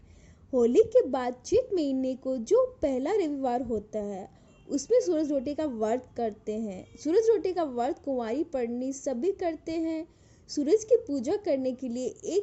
होली के बाद चैत महीने को जो पहला रविवार होता है उसमें सूरज रोटी का व्रत करते हैं। सूरज रोटी का व्रत कुंवारी पड़नी सभी करते हैं। सूरज की पूजा करने के लिए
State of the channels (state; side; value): identical; both; correlation 1.00